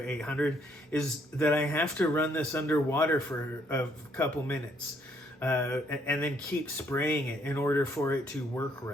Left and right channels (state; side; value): normal; both; correlation 0.69